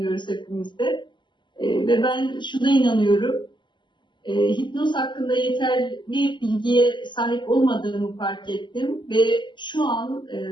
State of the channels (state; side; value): late; right; 0.22 ms